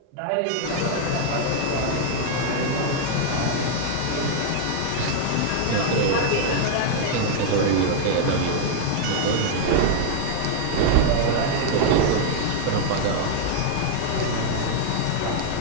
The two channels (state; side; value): different; both; correlation 0.00